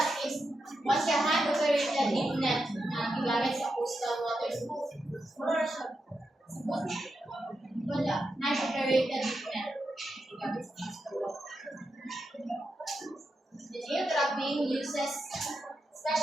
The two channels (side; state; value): both; normal; correlation 0.87